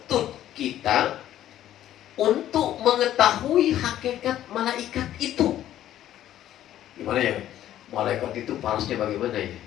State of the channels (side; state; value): right; quieter; 12.3 dB